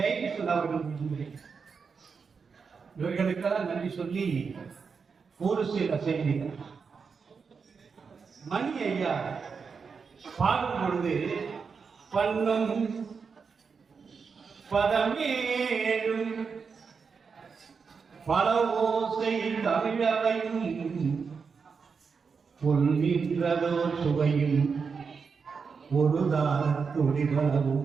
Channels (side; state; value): left; quieter; 5.5 dB